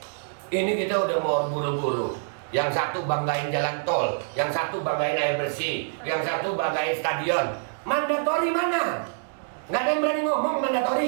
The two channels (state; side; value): silent; left; digital silence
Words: Ini kita udah mau buru-buru. Yang satu banggain jalan tol, yang satu banggain air bersih, yang satu banggain stadion. Mandatori mana? Nggak ada yang berani ngomong